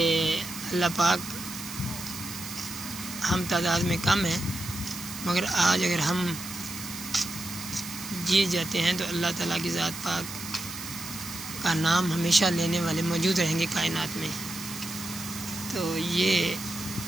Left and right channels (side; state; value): right; noise; hiss, 10 dB below the sound